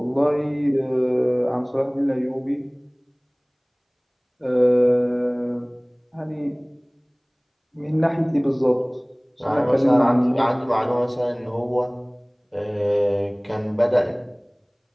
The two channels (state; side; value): identical; both; correlation 1.00